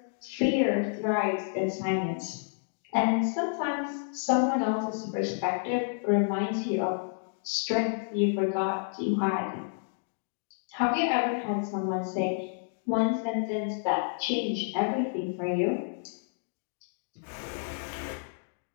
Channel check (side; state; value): right; silent; digital silence